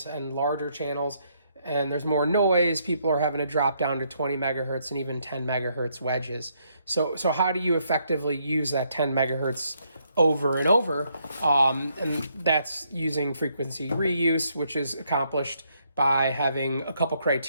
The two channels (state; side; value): inverted; both; correlation -0.73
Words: and larger channels, and there's more noise, people are having to drop down to 20 megahertz and even 10 megahertz wedges. So how do you effectively use that 10 megahertz over and over, and that's using frequency reuse, which is accomplished by having a couple